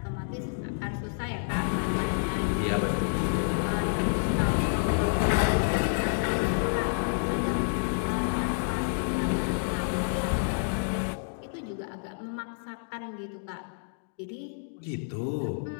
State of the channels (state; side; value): silent; right; digital silence